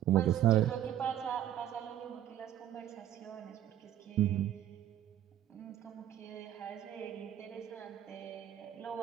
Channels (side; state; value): left; quieter; 11.5 dB